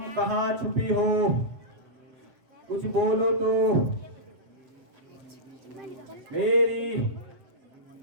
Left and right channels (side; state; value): left; late; 7.7 ms